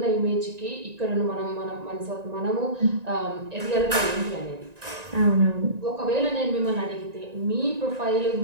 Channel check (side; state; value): left; late; 1.9 ms